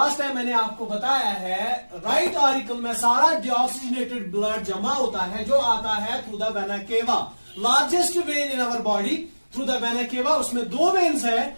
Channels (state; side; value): inverted; both; correlation -1.00